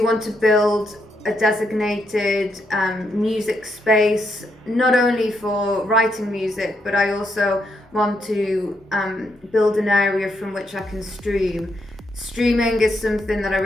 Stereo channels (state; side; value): normal; both; correlation 0.79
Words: want to build a designated music space, not only for writing music, but I also want to build an area from which I can stream. Streaming is something that I